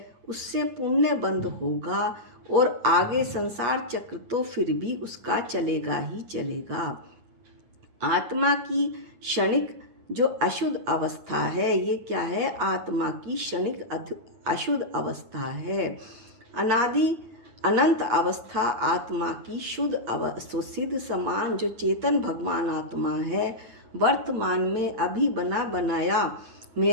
उससे पुण्य बंध होगा, और आगे संसार चक्र तो फिर भी उसका चलेगा ही चलेगा। आत्मा की क्षणिक जो अशुद्ध अवस्था है, ये क्या है? आत्मा की क्षणिक अशुद्ध अवस्था है। अनादि अनंत अवस्था आत्मा की शुद्ध सिद्ध समान जो चेतन भगवान आत्मा है, वर्तमान में अभी बना बनाया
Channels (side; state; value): left; late; 9.2 ms